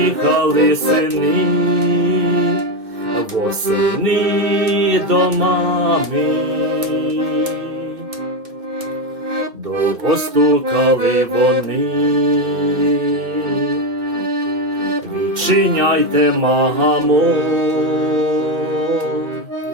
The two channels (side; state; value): left; late; 2.1 ms